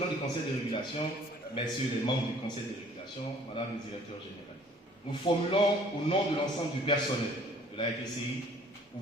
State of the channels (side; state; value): both; normal; correlation 0.55